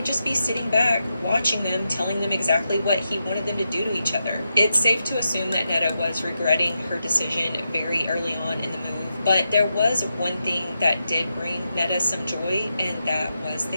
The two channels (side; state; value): both; inverted; correlation -0.87